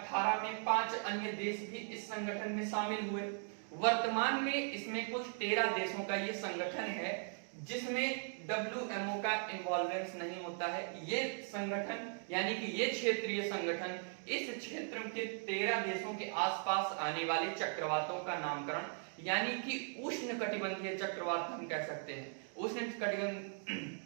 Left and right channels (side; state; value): left; silent; 52 dB below the other